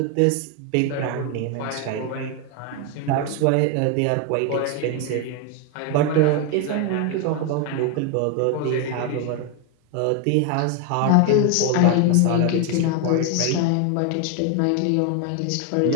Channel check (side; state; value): both; different; correlation 0.01